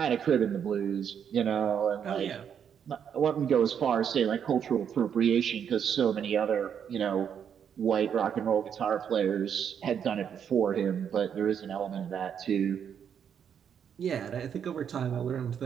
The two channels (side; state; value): left; quieter; 8.1 dB